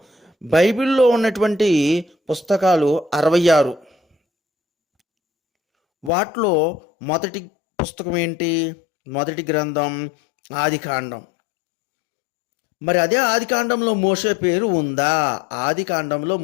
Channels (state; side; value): drops out; right; at 6.1 s